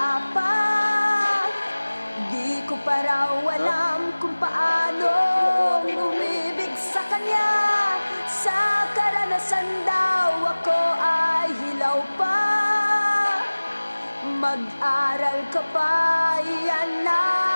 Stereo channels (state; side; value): inverted; both; correlation -1.00